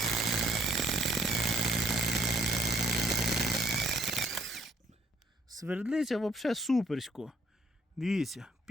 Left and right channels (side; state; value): both; normal; correlation 0.64